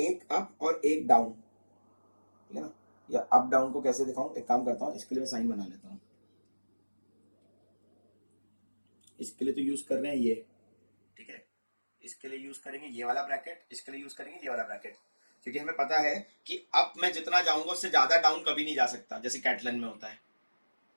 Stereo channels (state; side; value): inverted; both; correlation -1.00